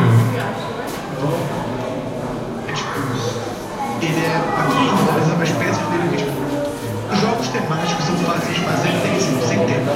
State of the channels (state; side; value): identical; both; correlation 1.00